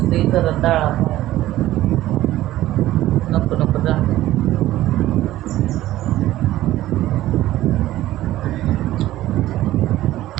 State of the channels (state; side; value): quieter; left; 15.0 dB